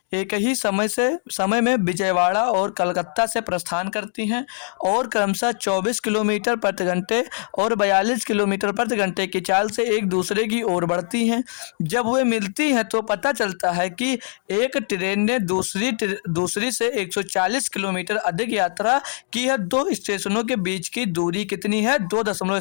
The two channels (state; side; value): silent; right; digital silence